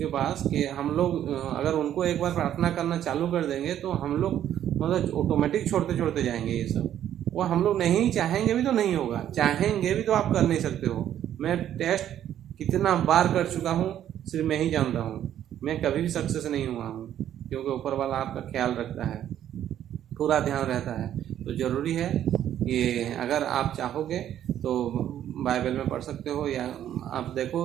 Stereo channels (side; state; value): left; quieter; 10.9 dB